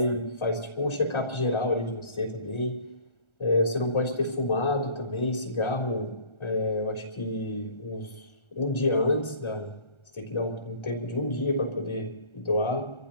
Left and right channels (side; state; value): right; late; 1.4 ms